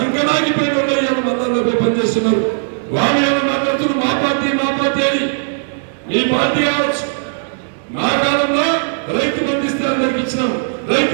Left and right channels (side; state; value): left; silent; digital silence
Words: మా కాలంలో రైతు బంధిస్తే అందరికి ఇచ్చినాం, రైతు